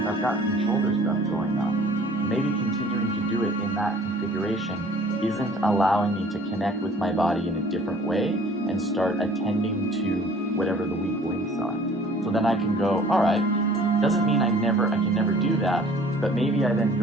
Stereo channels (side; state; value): both; normal; correlation 0.52